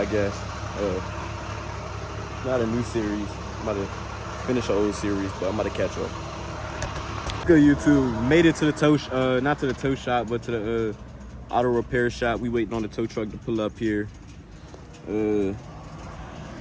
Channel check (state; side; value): identical; both; correlation 1.00